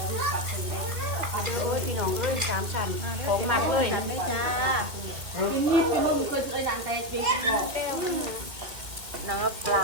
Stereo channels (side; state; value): left; late; 2.5 ms